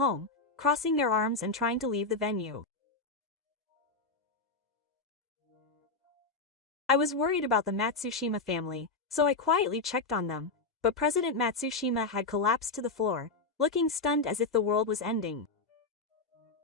crossing their arms and trying to leave the venue. I was worried about the Matsushima family, so I quietly checked on them, but President Matsushima had collapsed to the floor, looking stunned as if the world was ending.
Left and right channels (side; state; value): right; quieter; 3.7 dB